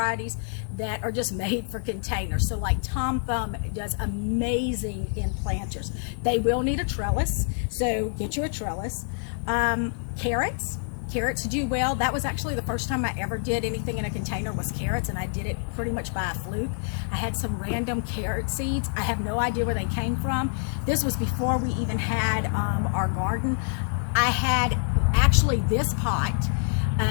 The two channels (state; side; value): silent; right; 60 dB below the other